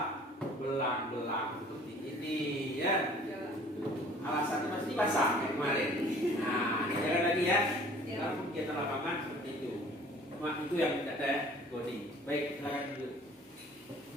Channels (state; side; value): normal; both; correlation 0.51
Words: belang-belang seperti ini ya. Alasannya pasti basah kayak kemarin. Nah, jangan lagi ya. Kalau kegiatan lapangan seperti itu. Cuma itu yang tidak ada ya, Goni. Baik, silakan dulu.